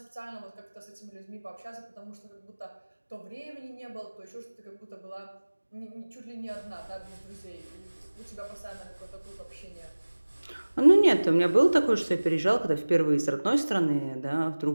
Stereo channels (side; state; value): both; inverted; correlation -1.00